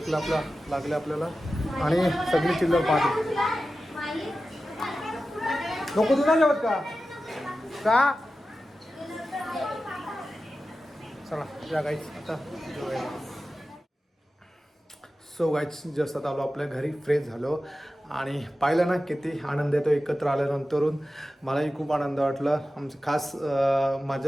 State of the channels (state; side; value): normal; both; correlation 0.94